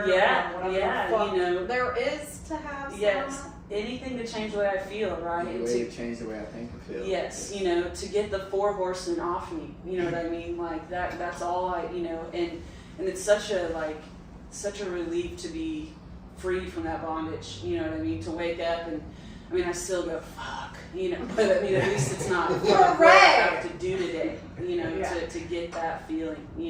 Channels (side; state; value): both; identical; correlation 1.00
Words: Yeah, or whatever yeah, the fuck you know. there is to have. Yes, anything to change the way I feel, right? The way to change the way I think and feel. Yes, you know, to get the 4 horsemen off me, you know what I mean? Like that's all you know, and it's such a relief to be free from that bondage, you know what I mean? To wake up and, I mean, I still go, fuck, you know, but I mean, at least it's not what I have to do today, you know, to get that feeling,